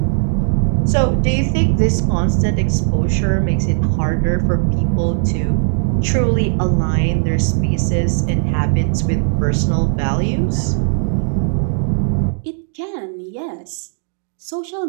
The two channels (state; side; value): silent; left; digital silence